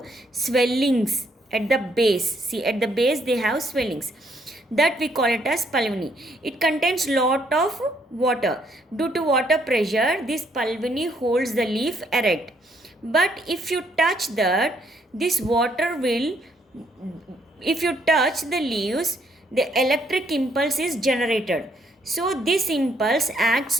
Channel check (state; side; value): normal; both; correlation 0.70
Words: swellings at the base. See, at the base they have swellings. That we call it as pulvini. It contains lot of water. Due to water pressure, this pulvini holds the leaf erect. But if you touch that, this water will, if you touch the leaves, the electric impulse is generated. So this impulse acts